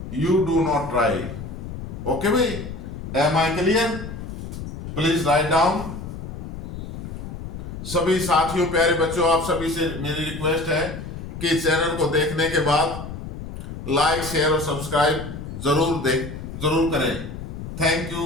You do not try. Okay भाई, am I clear? Please write down. सभी साथियों, प्यारे बच्चों, आप सभी से मेरी रिक्वेस्ट है कि चैनल को देखने के बाद लाइक, शेयर और सब्सक्राइब जरूर करें। Thank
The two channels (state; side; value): noise; left; rumble, 9 dB below the sound